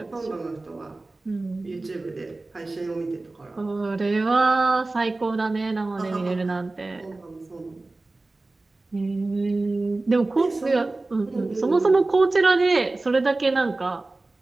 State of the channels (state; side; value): quieter; left; 3.1 dB